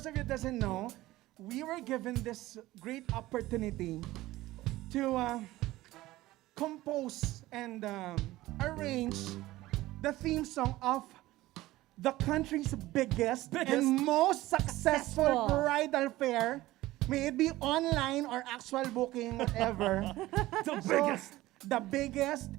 of you that doesn't know, we were given this great opportunity to compose and arrange the theme song of the country's biggest and most successful bridal fair. May it be online or actual booking, whatever. The biggest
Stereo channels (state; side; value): quieter; left; 17.2 dB